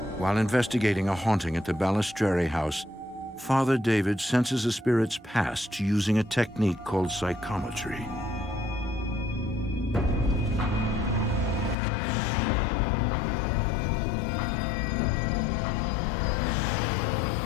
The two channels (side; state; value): right; drops out; at 11.8 s